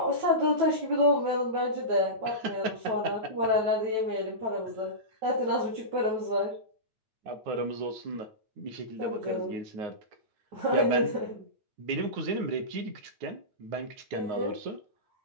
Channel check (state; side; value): late; left; 9.5 ms